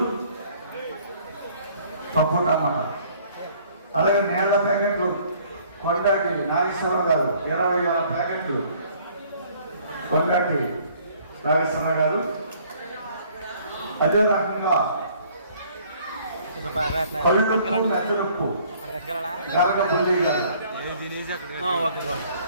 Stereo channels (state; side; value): inverted; both; correlation -0.58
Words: పప్పుటమ్మన్నారు. అలాగే నేల ప్యాకెట్లు కొండాటి నాగేశ్వరరావు గారు 20,000 ప్యాకెట్లు కొండాటి నాగేశ్వరరావు గారు. అదే రకంగా మెత్తలుప్పు గరగపల్లి గారు